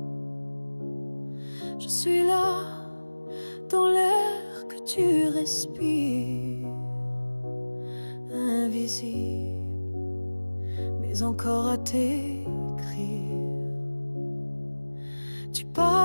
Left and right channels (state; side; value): inverted; both; correlation -1.00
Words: Je suis là dans l'air que tu respires, invisible mais encore à t'écrire. Tu